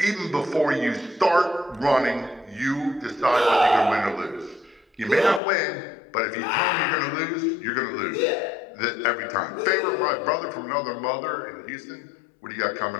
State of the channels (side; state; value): right; drops out; at 5.4 s